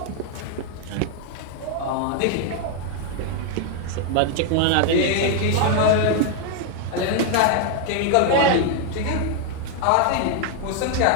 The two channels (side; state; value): both; different; correlation 0.00